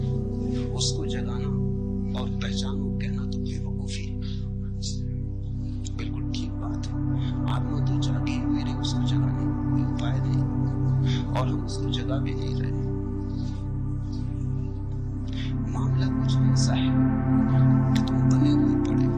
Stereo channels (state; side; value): identical; both; correlation 1.00